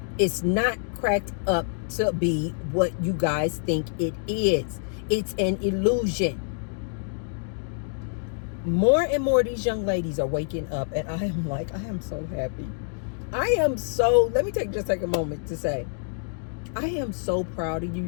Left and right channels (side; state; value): right; silent; digital silence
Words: It's not cracked up to be what you guys think it is. It's an illusion. More and more of these young ladies are waking up, and I am so happy. Let me just take a moment to say, I am so proud of you